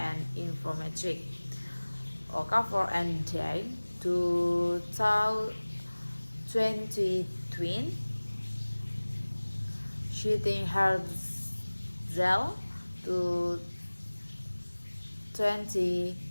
informametric. Okafor and Day 2020, Shooting Herzel to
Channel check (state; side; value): inverted; both; correlation -1.00